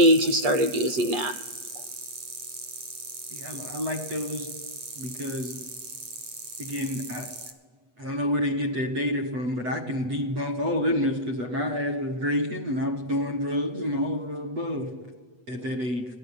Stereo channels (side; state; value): left; late; 8.1 ms